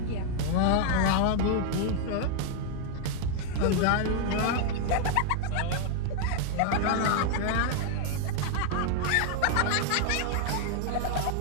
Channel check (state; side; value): different; both; correlation 0.00